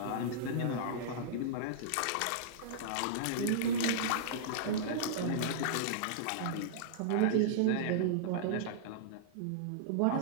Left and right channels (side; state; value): both; different; correlation -0.02